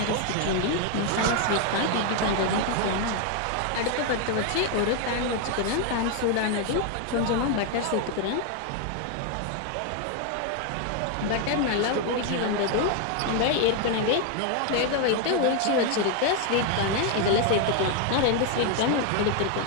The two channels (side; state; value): both; different; correlation 0.01